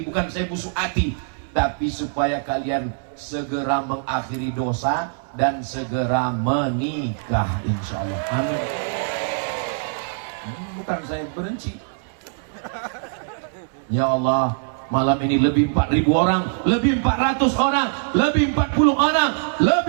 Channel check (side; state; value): left; silent; 63 dB below the other